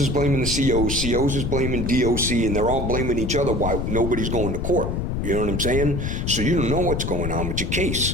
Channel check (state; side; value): noise; left; rumble, 1 dB below the sound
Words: blaming the COs. COs is blaming DOC. And they're all blaming each other why nobody's going to court. You know what I'm saying? So you don't know what's going on with your